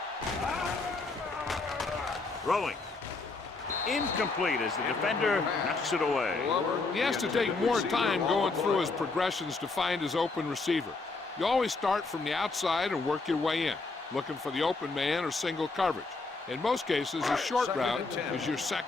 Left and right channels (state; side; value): quieter; right; 3.8 dB